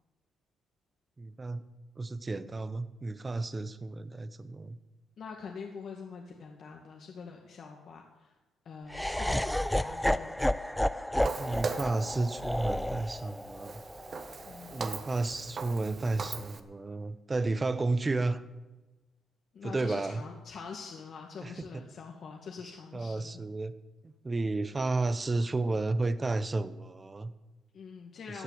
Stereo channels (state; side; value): normal; both; correlation 0.96